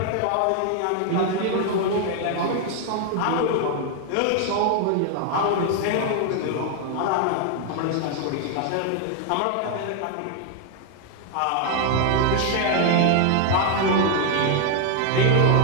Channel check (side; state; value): both; different; correlation 0.00